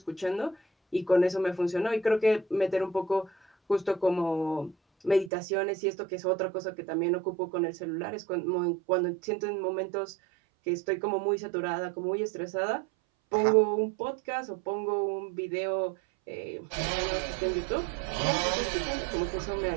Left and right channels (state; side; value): drops out; left; at 5.3 s